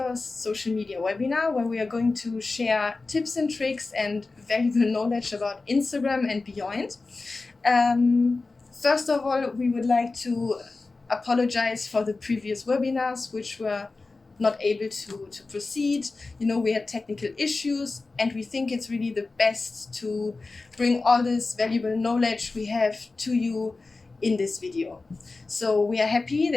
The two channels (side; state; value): right; quieter; 3.7 dB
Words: social media webinar where we are going to share tips and tricks and valuable knowledge about Instagram and beyond. First of all, we would like to apologize for the previous webinars which were not able to proceed. We had technical issues and we think it's really the best to bring all this valuable knowledge we have to you in this video. So we are happy